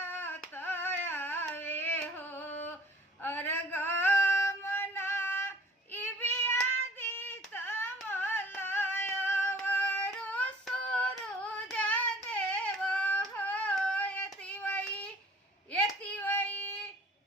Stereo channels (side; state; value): both; normal; correlation 0.52